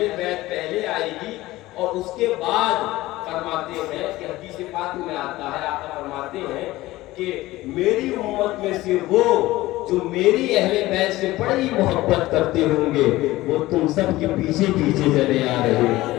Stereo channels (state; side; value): quieter; right; 17.8 dB